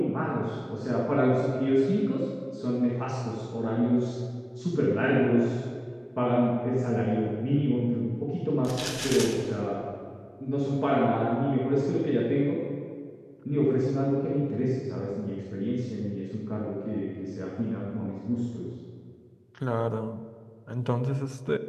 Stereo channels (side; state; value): both; identical; correlation 1.00